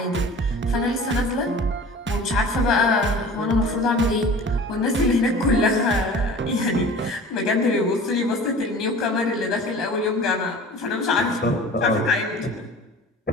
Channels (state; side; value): normal; both; correlation 0.41